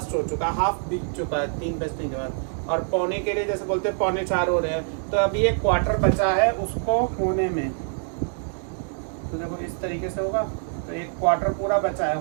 हो चुका है, हाफ बीत चुका है 3 बजने के बाद। और पौने के लिए जैसे बोलते हैं 3:45 हो रहे हैं तो अभी एक क्वार्टर बचा है उसको होने में। तो देखो इस तरीके से होगा तो एक क्वार्टर पूरा बचा है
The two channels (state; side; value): silent; left; 62 dB below the other